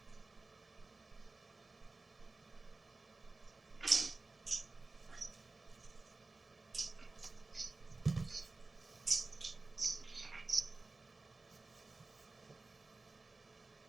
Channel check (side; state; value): left; quieter; 3.5 dB